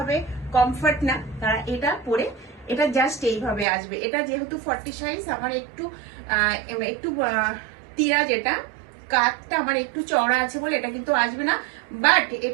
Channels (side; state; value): left; drops out; at 3.7 s